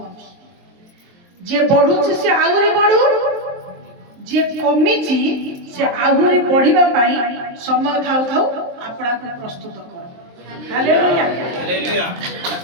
ଯିଏ ବଢୁଛି ସେ ଆହୁରି ବଢୁ ଯିଏ କମିଛି ସେ ଆହୁରି ବଢିବା ପାଇଁ ସମୟ ଥାଉ ଥାଉ ଆପଣାକୁ ପ୍ରସ୍ତୁତ କର। ହାଲେଲୁୟା।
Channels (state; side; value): late; left; 23 ms